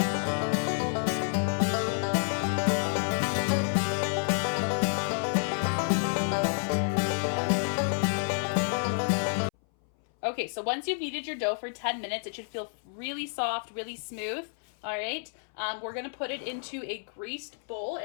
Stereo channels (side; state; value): right; silent; 58 dB below the other